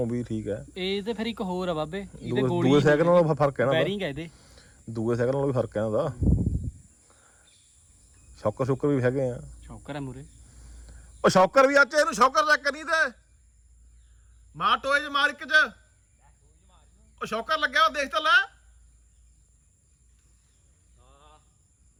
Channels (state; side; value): identical; both; correlation 1.00